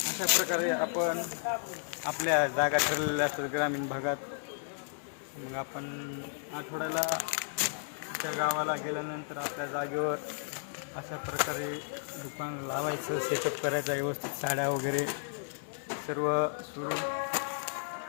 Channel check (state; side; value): silent; right; digital silence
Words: अशा प्रकारे आपण आपल्या जागा ठरलेल्या असतात ग्रामीण भागात. मग आपण आठवड्याला त्या गावाला गेल्यानंतर आपल्या जागेवर अशा प्रकारे दुकान लावायचं, सेटअप करायचं व्यवस्थित, साड्या वगैरे सर्व सुरू.